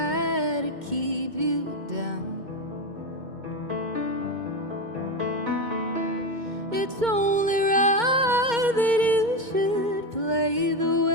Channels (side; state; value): left; late; 2.2 ms